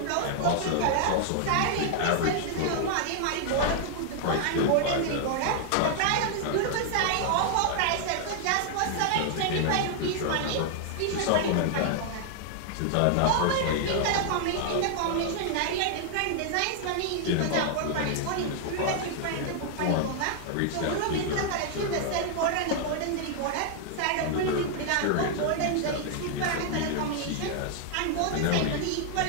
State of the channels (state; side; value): different; both; correlation 0.00